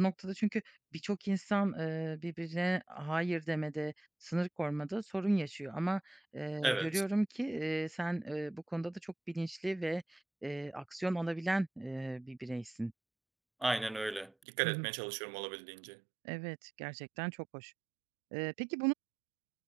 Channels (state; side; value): drops out; left; at 14.3 s